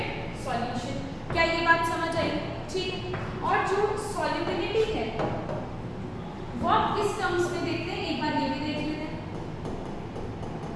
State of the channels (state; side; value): identical; both; correlation 1.00